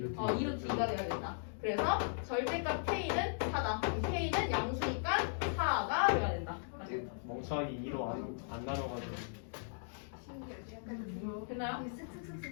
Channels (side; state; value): right; silent; digital silence